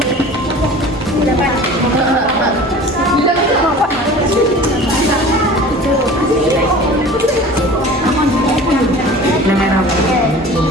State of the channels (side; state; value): both; normal; correlation 0.41